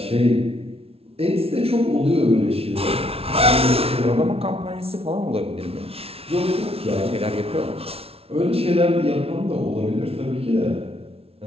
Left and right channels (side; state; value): left; late; 0.29 ms